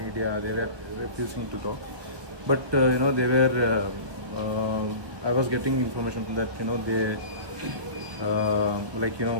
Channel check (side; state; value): left; late; 1.2 ms